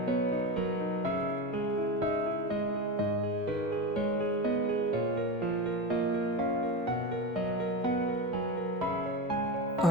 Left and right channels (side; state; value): both; normal; correlation 0.21